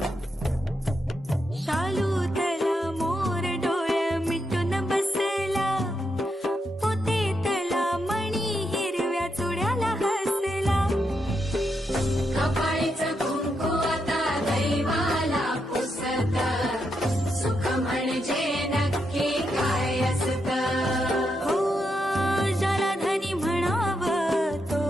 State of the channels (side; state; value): both; normal; correlation 0.82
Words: शालू तला मोर डोळे मिटून बसला पोते तला मणी हिरव्या चुड्याला हसला कपाळीचं कुंकू आता दैवाला पुसत सुख म्हणजे नक्की काय असत हो ज्याला धनी म्हणावं तो